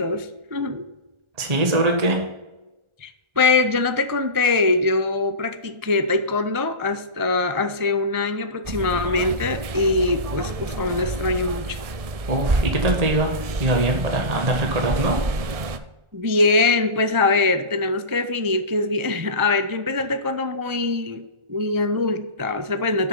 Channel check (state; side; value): late; left; 1.4 ms